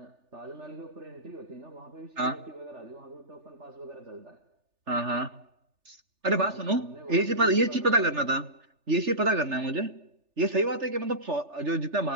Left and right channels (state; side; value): late; left; 3.4 ms